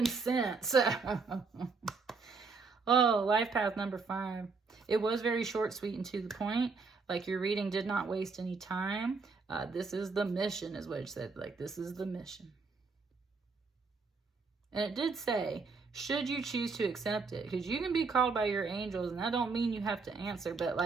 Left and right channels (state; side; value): quieter; left; 4.6 dB